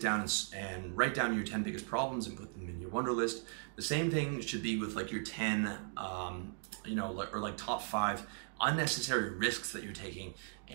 and write down your 10 biggest problems and put them in your wonder list. The same thing should be with like your 10, or like top 5 unnecessary risks that you're taking,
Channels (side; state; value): left; silent; 53 dB below the other